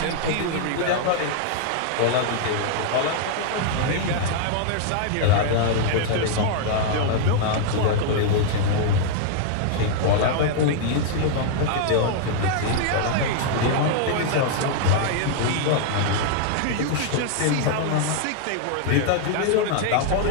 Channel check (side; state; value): both; different; correlation -0.01